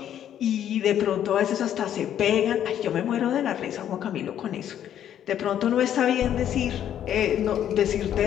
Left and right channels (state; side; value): quieter; right; 10.4 dB